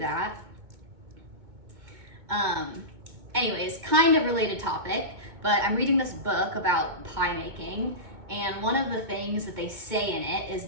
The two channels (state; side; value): late; left; 2.2 ms